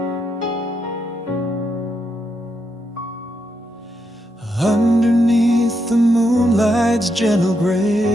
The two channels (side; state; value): both; normal; correlation 0.81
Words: Underneath the moonlight's gentle